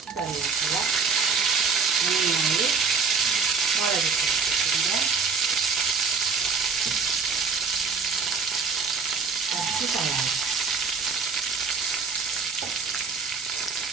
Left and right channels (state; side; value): quieter; left; 5.2 dB